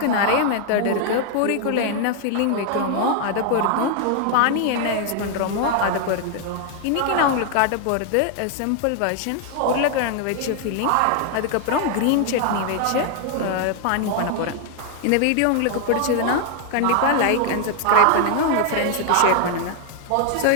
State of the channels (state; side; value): different; both; correlation 0.00